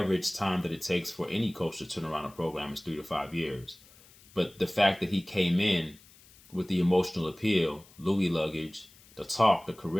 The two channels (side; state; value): left; noise; hiss, 25 dB below the sound